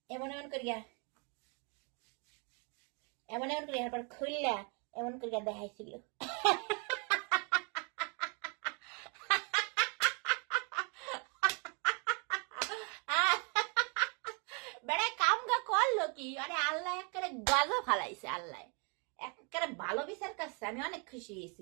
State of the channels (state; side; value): quieter; left; 35.3 dB